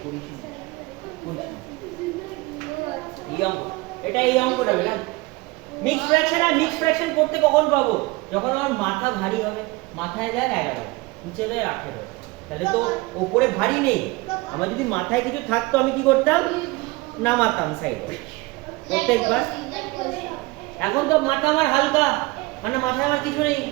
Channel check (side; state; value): left; quieter; 22.7 dB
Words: করিস না, এই অঙ্ক, এটা এই অঙ্কটা বেটা মিক্স ফ্র্যাকশন। আর মিক্স ফ্র্যাকশন করতে কখন পাবো? যখন আমার মাথা ভারী হবে, মাথায় দেখ 11, নিচে দেয় 18, তাহলে তো ওপরে ভারী নেই। আমার যদি মাথায় কিছু থাকতো আমি কি করতাম, নামাতাম সাইডে প্রত্যেকবার। এখন তো মাথা আমার হালকা, মানে মাথায় আমার কিছু নেই,